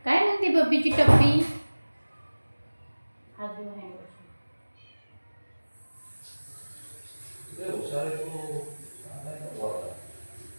काय म्हणते बब्बीची टप्पी. हात धुवून आहे.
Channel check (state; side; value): inverted; both; correlation -1.00